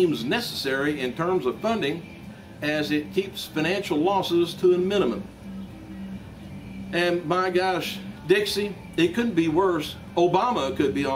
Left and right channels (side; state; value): both; identical; correlation 1.00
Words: necessary in terms of funding, as it keeps financial losses to a minimum. And my gosh, Dixie, it couldn't be worse. Obama could be